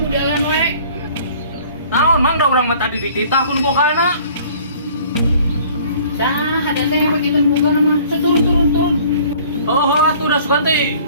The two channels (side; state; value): both; inverted; correlation -0.52